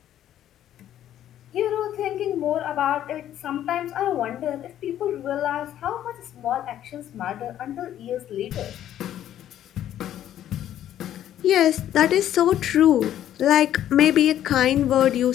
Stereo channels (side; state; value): right; quieter; 11.5 dB